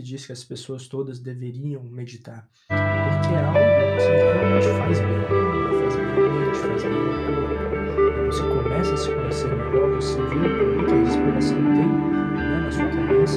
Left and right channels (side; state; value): both; identical; correlation 1.00